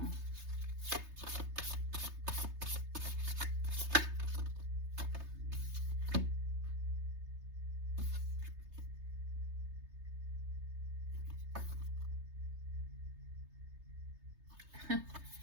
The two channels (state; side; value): late; left; 3.3 ms